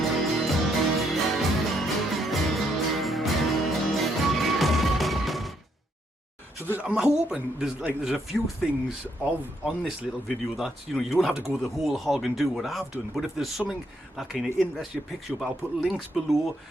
So I'm hoping there's a few things on this little video that you don't have to go the whole hog and do what I've done, but if there's something that kind of interests you, picks you up, I'll put links below.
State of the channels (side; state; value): both; normal; correlation 0.74